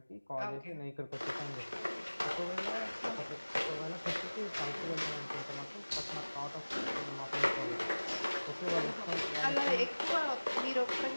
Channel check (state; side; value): inverted; both; correlation -1.00